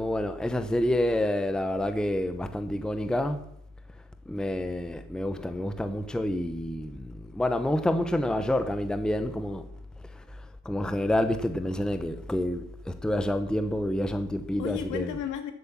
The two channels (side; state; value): both; normal; correlation 0.89